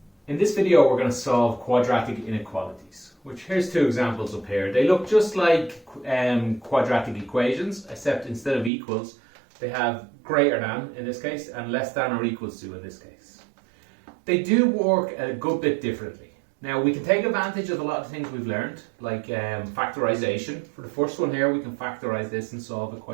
In this video we're going to solve quadratic inequalities, which here's two examples up here. They look just like quadratic equations, except instead of equals they have greater than in this case and less than or equals to in this case. They do work a good bit differently. Now we can take advantage of a lot of things we've learned, like factorization. For the first one here we can factorize this and solve it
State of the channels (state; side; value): drops out; left; at 8.7 s